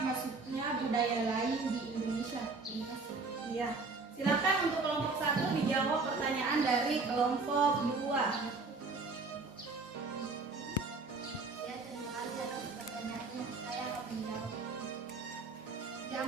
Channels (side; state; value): left; quieter; 3.9 dB